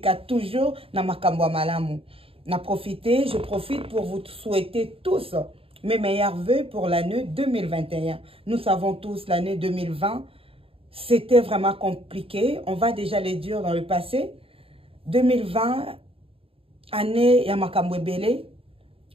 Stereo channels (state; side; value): late; left; 0.27 ms